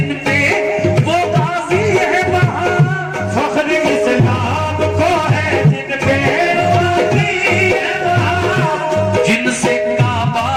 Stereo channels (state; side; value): identical; both; correlation 1.00